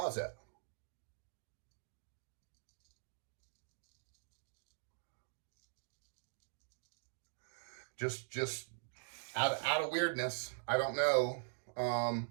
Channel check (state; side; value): silent; left; digital silence